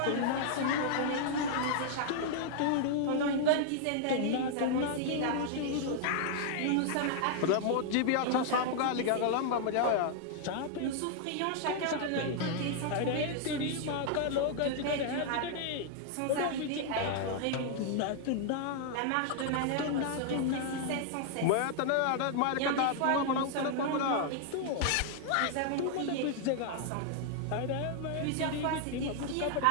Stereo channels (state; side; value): different; both; correlation 0.00